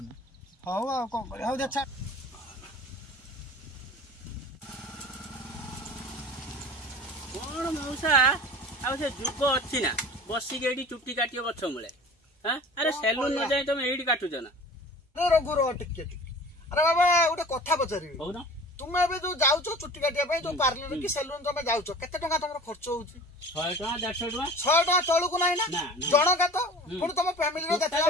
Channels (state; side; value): normal; both; correlation 0.41